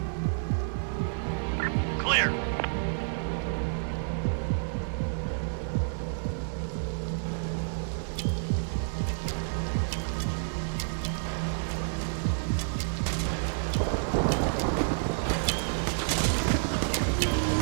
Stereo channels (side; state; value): left; silent; digital silence